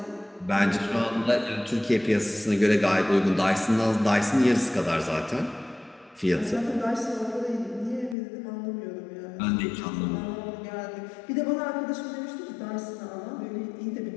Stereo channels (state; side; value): drops out; right; at 8.2 s